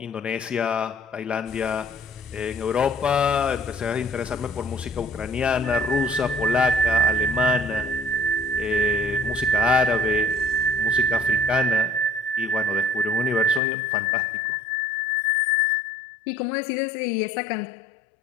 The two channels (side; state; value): right; drops out; at 13.6 s